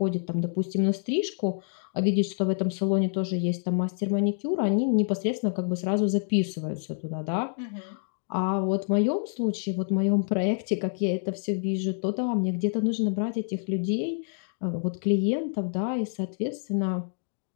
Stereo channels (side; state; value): right; silent; digital silence